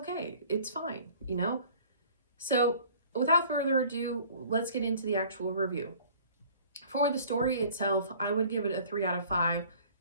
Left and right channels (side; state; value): both; inverted; correlation -0.51